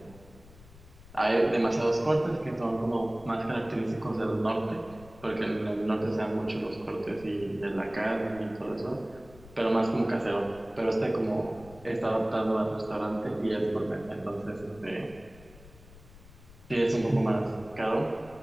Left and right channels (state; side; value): noise; left; rumble, 21 dB below the sound